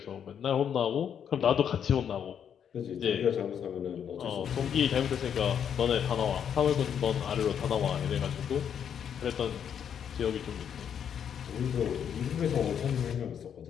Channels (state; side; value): quieter; right; 8.3 dB